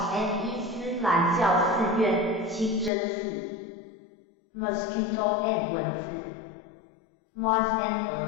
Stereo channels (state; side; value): drops out; right; at 2.9 s